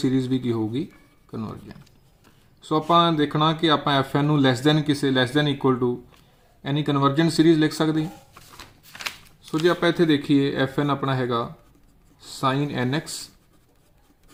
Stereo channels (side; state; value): both; identical; correlation 1.00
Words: ਵੀ ਕੀ ਹੋਊਗੀ ਕਨਵਰਜੈਂਟ। ਸੋ ਆਪਾਂ ਦੇਖਣਾ ਕਿ ਆਪਾਂ fn ਨੂੰ less than equal to any convergent series ਲਿਖ ਸਕਦੇ ਹਾਂ। ਸੋ ਜੇ ਆਪਾਂ ਇੱਥੇ ਦੇਖੀਏ fn ਆਪਣਾ ਹੈਗਾ sin nx